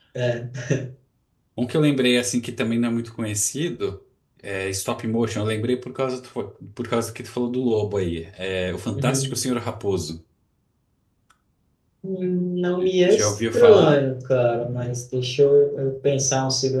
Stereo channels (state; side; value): identical; both; correlation 1.00